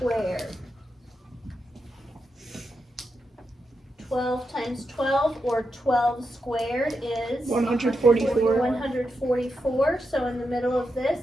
12 times 12, or 12 squared, is 144. 144. So in the middle of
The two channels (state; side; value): normal; both; correlation 0.86